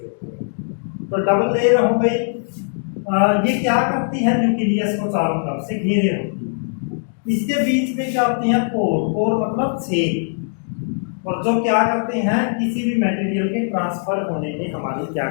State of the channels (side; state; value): right; silent; 65 dB below the other